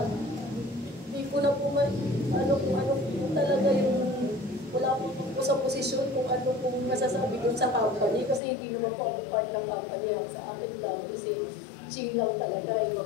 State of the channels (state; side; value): drops out; right; at 8.4 s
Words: Hindi ko na po kung ano po talaga yung wala po sa posisyon kung ano pong masasabi dun sa company kasi hindi naman po ako part ng company lang sa akin lang kasi ching lang talaga